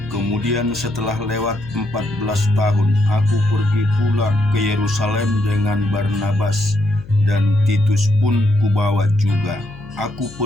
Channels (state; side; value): noise; left; hum, 19 dB below the sound